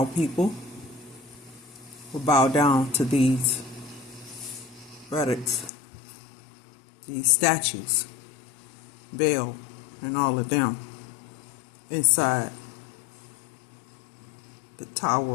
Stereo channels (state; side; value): drops out; right; at 5.7 s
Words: people will bow down to these relics, these statues, Baal and all of them inside the